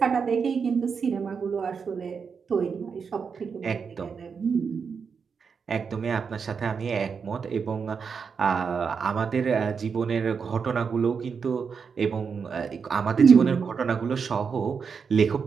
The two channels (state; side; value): quieter; left; 5.9 dB